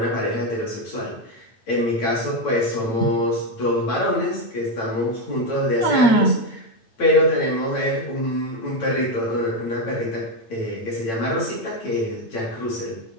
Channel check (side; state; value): right; late; 8.9 ms